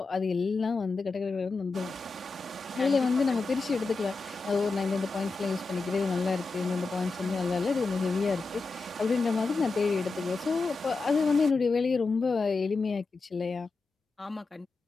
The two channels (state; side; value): quieter; right; 4.0 dB